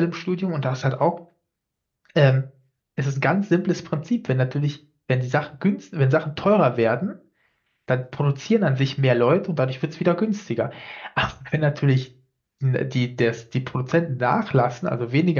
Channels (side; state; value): both; identical; correlation 1.00